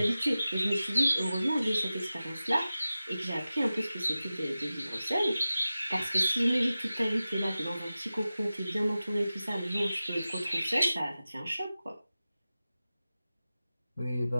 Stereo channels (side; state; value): both; inverted; correlation -0.95